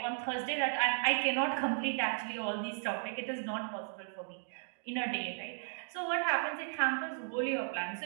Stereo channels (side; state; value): left; silent; digital silence